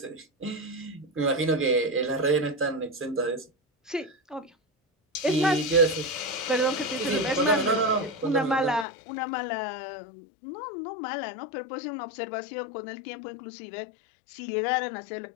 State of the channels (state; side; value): drops out; right; at 8.8 s